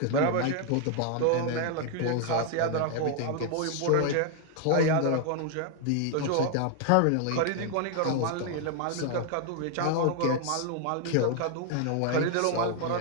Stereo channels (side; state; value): both; different; correlation 0.00